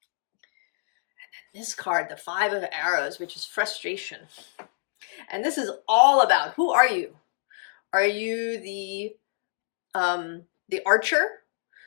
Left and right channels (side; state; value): right; silent; digital silence